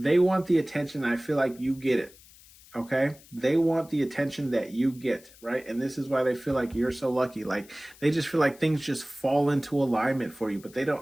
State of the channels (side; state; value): left; noise; hiss, 24 dB below the sound